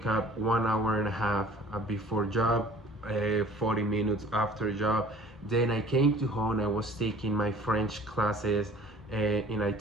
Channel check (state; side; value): normal; both; correlation 0.49